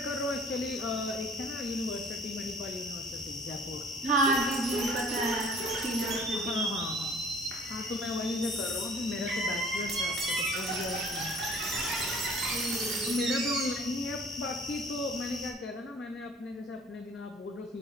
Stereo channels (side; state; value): both; normal; correlation 0.52